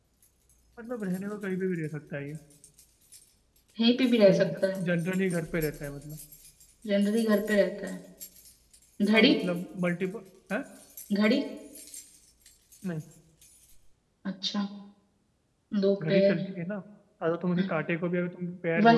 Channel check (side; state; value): both; identical; correlation 1.00